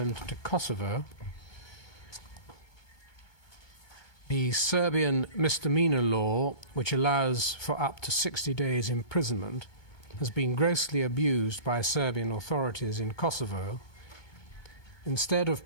to Kosovo. The Serbian misdemeanor law, which allows for up to 60 days imprisonment, has been grossly abused by Serbian authorities in Kosovo. Instead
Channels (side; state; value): right; late; 2.2 ms